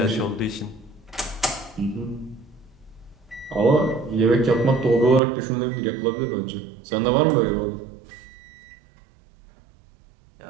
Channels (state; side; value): drops out; left; at 5.2 s